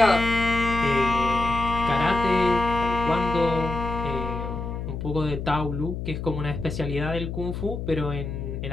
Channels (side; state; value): left; noise; hum, 5 dB below the sound